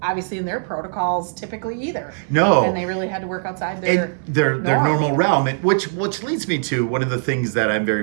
obviously in their protocols typically either. No. And they really had to work outside their normal realm, which leads me to one of the things that I'm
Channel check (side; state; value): left; silent; 64 dB below the other